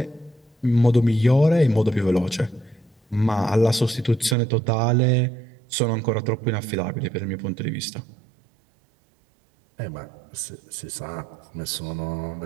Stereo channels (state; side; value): drops out; left; at 4.4 s